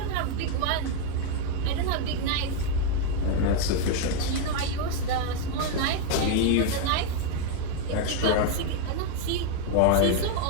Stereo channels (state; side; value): different; both; correlation 0.01